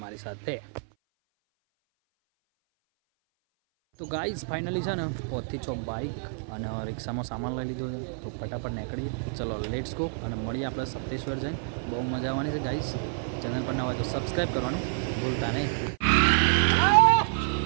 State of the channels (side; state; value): left; silent; 57 dB below the other